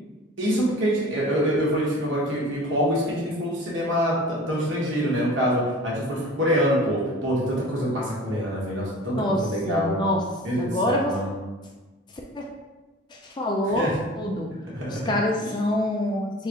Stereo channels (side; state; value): both; normal; correlation 0.42